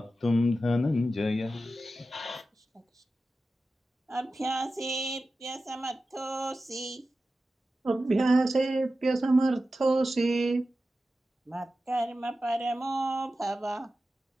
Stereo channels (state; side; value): normal; both; correlation 0.93